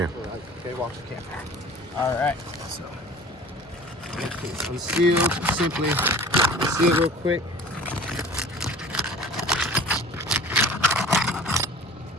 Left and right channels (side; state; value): both; normal; correlation 0.44